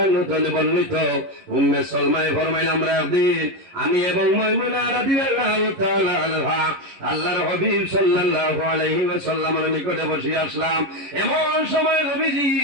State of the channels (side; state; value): left; late; 11 ms